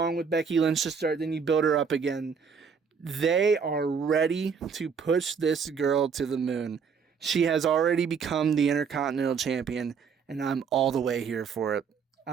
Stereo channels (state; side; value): quieter; left; 6.1 dB